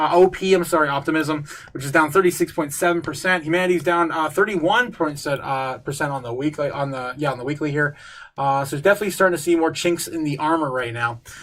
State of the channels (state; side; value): identical; both; correlation 1.00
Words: which is down 36.7%. Humanity's down 31% on the weekly, on the weekly here. So it's definitely starting to see more chinks in the armor right now.